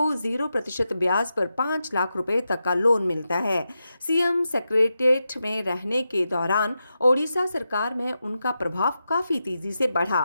0% ब्याज पर 5 लाख रुपए तक का लोन मिलता है। सीएम सेक्रेटेरिएट में रहने के दौरान ओडिशा सरकार में उनका प्रभाव काफी तेजी से बढ़ा।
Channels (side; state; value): both; inverted; correlation -0.89